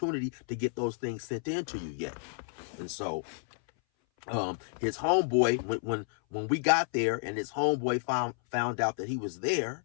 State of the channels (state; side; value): silent; right; 57 dB below the other